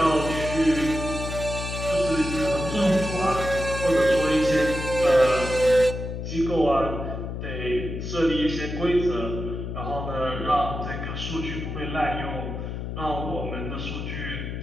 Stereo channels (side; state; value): left; noise; hum, 6 dB below the sound